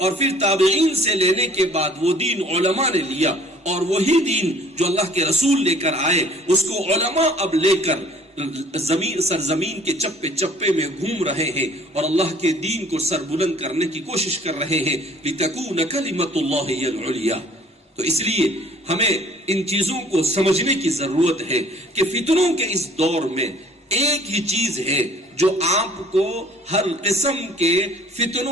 پھر تابعین سے لینے کے بعد وہ دین علماء نے لیا، اور وہی دین جو اللہ کے رسول لے کر آئے اس کو علماء اب لے کر سرزمین کے چپے چپے میں گھوم رہے ہیں اور اللہ کے دین کو سر بلند کرنے کی کوشش کر رہے ہیں۔ لِتَكُونَ كَلِمَةُ اللَّهِ هِيَ الْعُلْيَا۔ تو اس لیے ہمیں ان چیزوں کو سمجھنے کی ضرورت ہے کہ فتنوں کے اس دور میں ایک ہی چیز ہے جو آپ کو ہر قسم کے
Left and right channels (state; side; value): normal; both; correlation 0.54